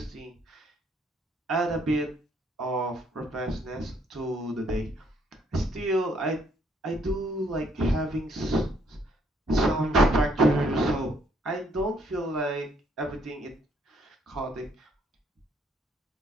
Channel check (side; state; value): both; normal; correlation 0.68